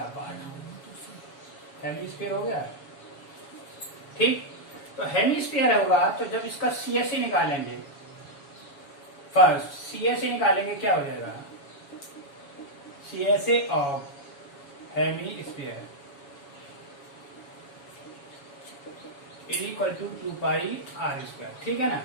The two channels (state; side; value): late; right; 7.2 ms